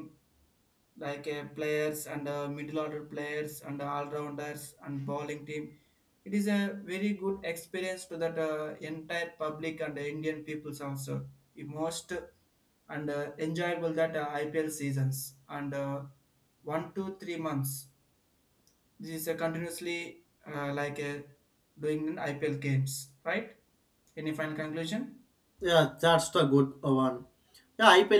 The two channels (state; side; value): identical; both; correlation 1.00